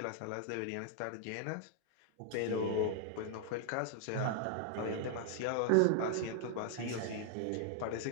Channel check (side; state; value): both; different; correlation 0.00